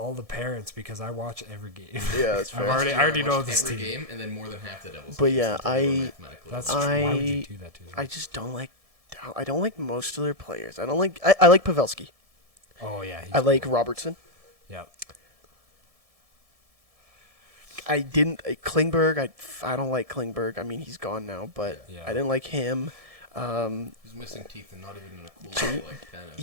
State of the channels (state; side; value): late; left; 1.7 ms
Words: the parents because I watch every game. Yeah, that's fair. I already know this every team. game, and then more than half the Devils. But yeah, that's true. Why would you do that to them? I just don't like. I don't like most of their players. I don't like. I like Pavelski. Oh yeah. I like Robertson. Yeah. I didn't Klingberg. I don't like Klingberg. I mean, he's gone now, but I didn't like him. He's missing teeth and not even in a cool way, like tennis.